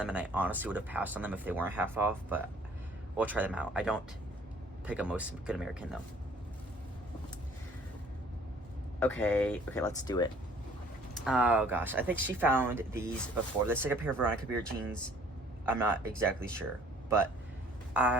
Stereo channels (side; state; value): both; normal; correlation 0.56